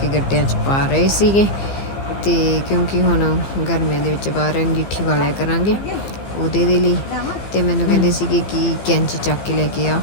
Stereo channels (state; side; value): late; right; 15 ms